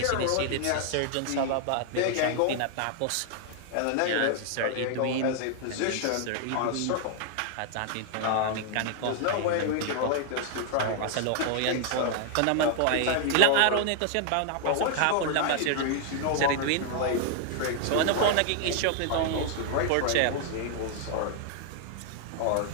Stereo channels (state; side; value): different; both; correlation 0.00